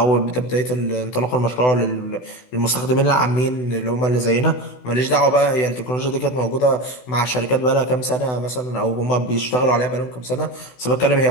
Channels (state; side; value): late; right; 16 ms